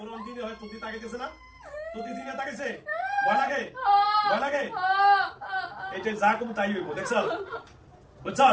অন্তিম হয় তুই তাকাইতেছ না তুই দিনে তাকাইছে ভয় লাগে এটা যা কম তাই হইব দেখছ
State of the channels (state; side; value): identical; both; correlation 1.00